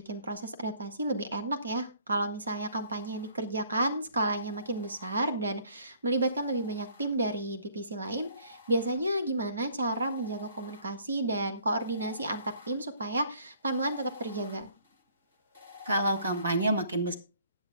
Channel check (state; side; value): inverted; both; correlation -0.59